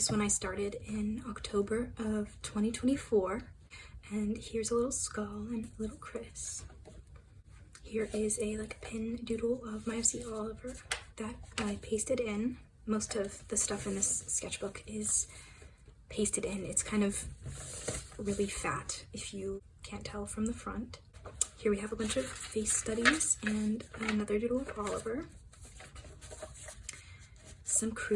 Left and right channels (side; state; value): both; identical; correlation 1.00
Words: one I started in October of 2024, and here's a little skull and a little Chris. Here is a pin doodle of my FC Oliver that I pasted in. Most of the stuff in this sketchbook is pasted in. It's kind of really fat if you can't tell from the front. Here we have a bunch of face studies and another doodle of Oliver, some